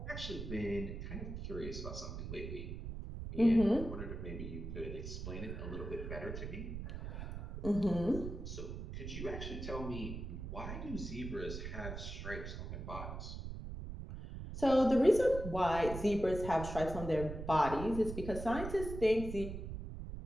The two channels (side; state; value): right; noise; rumble, 7 dB below the sound